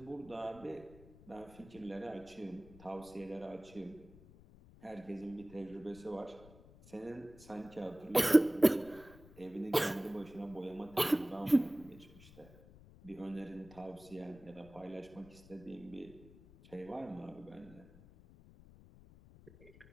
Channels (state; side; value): noise; left; rumble, 21 dB below the sound